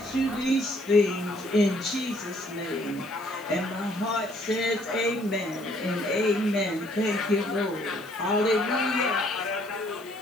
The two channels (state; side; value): noise; left; hiss, 23 dB below the sound